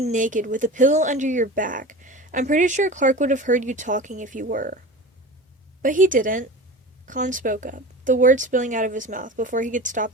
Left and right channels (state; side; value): normal; both; correlation 0.33